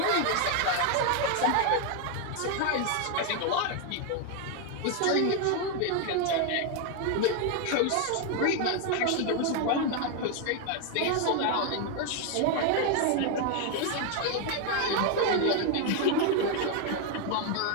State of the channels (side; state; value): both; different; correlation 0.01